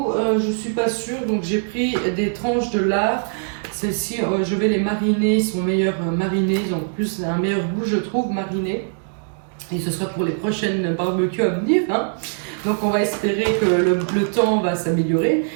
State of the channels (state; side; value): silent; left; digital silence